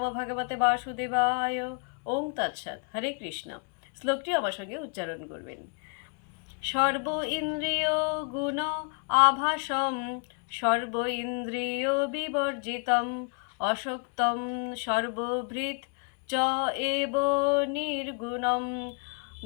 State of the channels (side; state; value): right; quieter; 38.1 dB